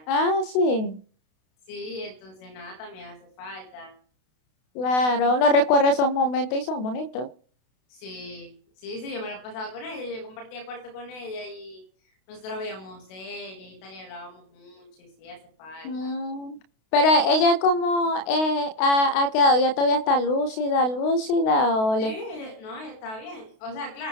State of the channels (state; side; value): late; right; 32 ms